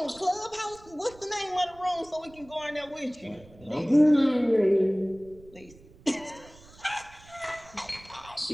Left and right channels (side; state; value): right; noise; rumble, 23 dB below the sound